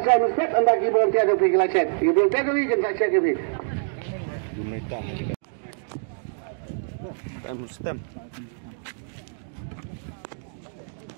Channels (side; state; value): left; silent; digital silence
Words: siya ng set ang nag-ibang tiyan yung pila set. Ibang tiyan yung ikan sa set yung video. Gumita. Stem.